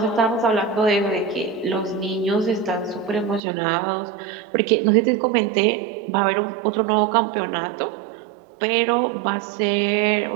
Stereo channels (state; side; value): drops out; left; at 3.4 s